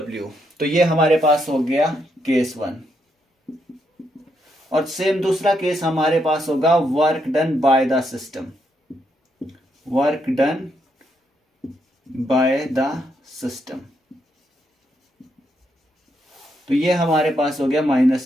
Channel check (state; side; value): normal; both; correlation 0.78